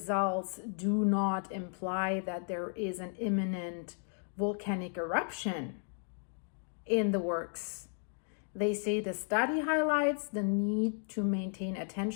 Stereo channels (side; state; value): right; silent; 55 dB below the other